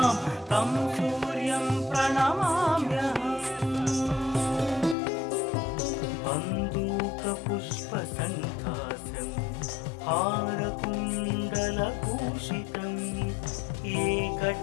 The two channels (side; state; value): right; drops out; at 5.0 s